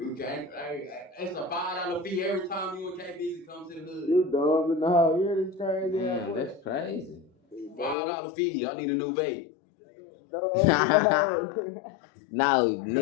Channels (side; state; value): right; drops out; at 8.0 s